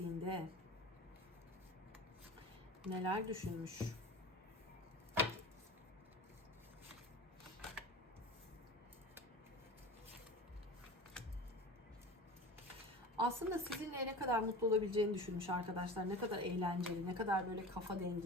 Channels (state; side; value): normal; both; correlation 0.33